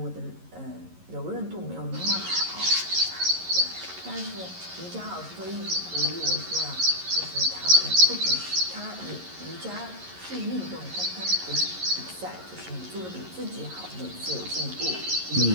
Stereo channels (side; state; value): left; late; 11 ms